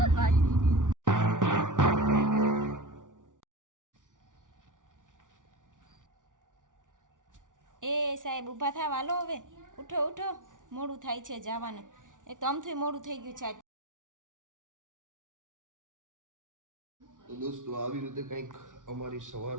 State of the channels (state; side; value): late; left; 0.87 ms